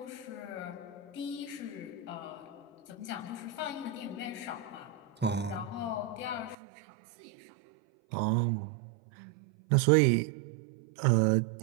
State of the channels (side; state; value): left; drops out; at 6.6 s